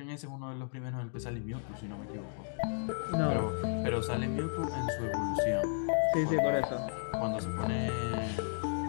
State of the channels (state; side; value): silent; right; digital silence